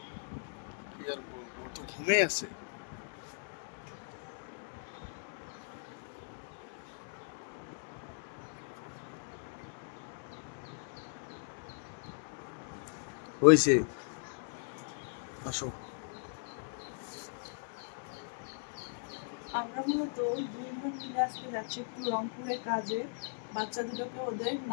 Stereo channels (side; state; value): right; silent; digital silence